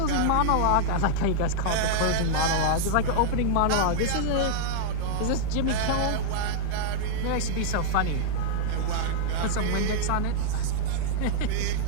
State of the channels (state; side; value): different; both; correlation -0.01